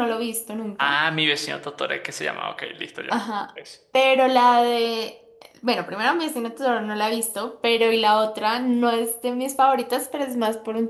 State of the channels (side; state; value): both; identical; correlation 1.00